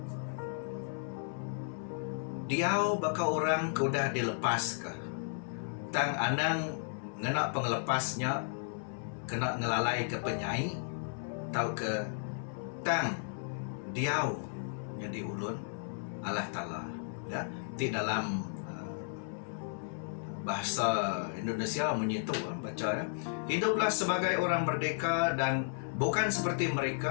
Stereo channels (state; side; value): silent; right; 55 dB below the other